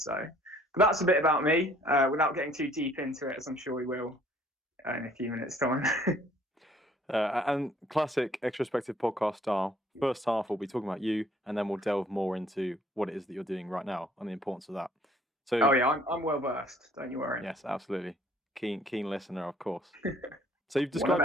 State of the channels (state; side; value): normal; both; correlation 0.59